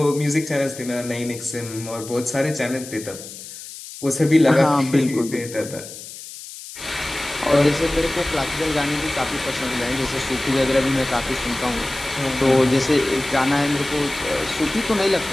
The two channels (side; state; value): left; noise; hiss, 13 dB below the sound